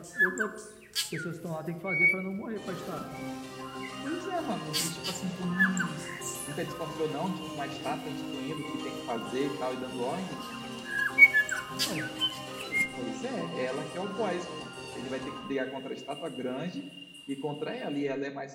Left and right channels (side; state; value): both; identical; correlation 1.00